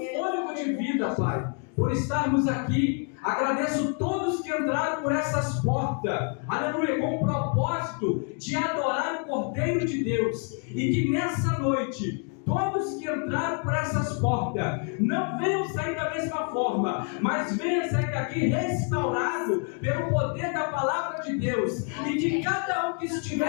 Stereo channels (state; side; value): quieter; right; 39.6 dB